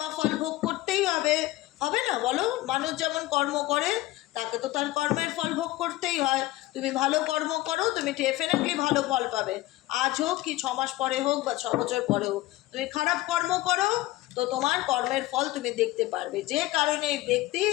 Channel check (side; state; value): right; quieter; 17.6 dB